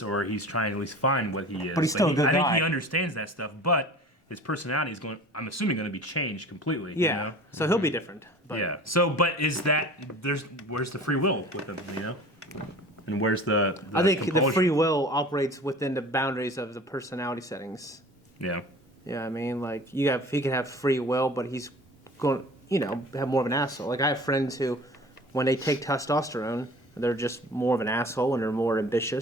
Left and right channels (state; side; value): normal; both; correlation 0.42